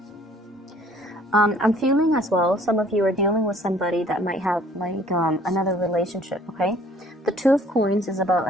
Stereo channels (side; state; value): both; normal; correlation 0.56